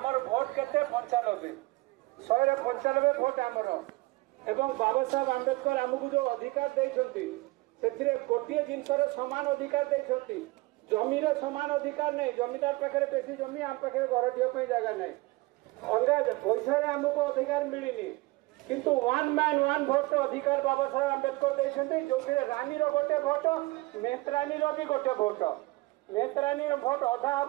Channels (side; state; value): left; quieter; 22.4 dB